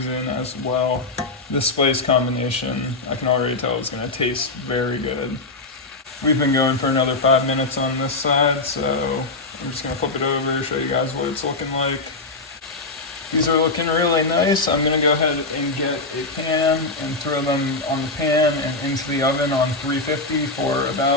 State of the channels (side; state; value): right; quieter; 3.3 dB